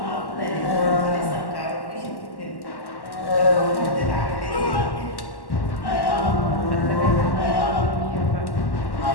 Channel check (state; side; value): late; right; 1.1 ms